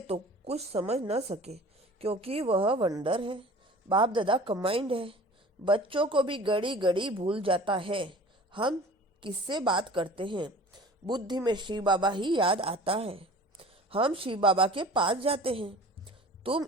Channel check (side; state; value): both; normal; correlation 0.43